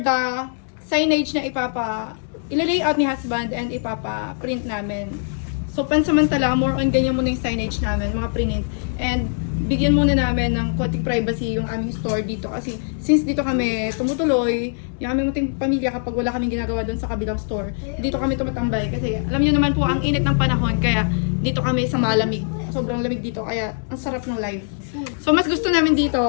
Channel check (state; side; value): silent; right; digital silence